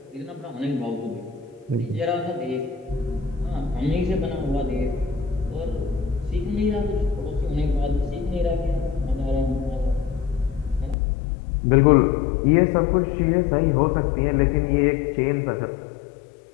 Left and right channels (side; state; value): right; drops out; at 11.0 s